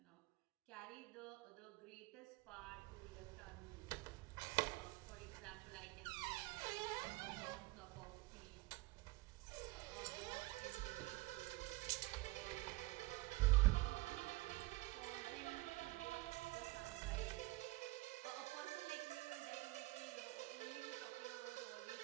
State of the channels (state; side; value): quieter; left; 21.6 dB